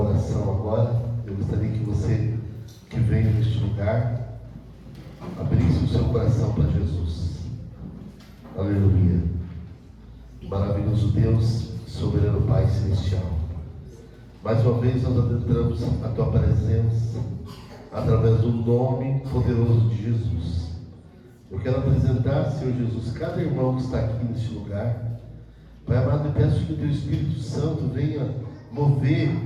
agora. Eu gostaria que você que veio neste lugar abrisse o seu coração para Jesus. Aleluia. Maravilhoso Deus, soberano Pai celestial. Mais uma vez nós adentramos a tua presença através do nome poderoso de Jesus. Eu quero apresentar, Senhor Jesus, cada irmão que está aqui neste lugar. Pai amado, eu peço que o teu Espírito Santo venha mover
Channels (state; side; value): identical; both; correlation 1.00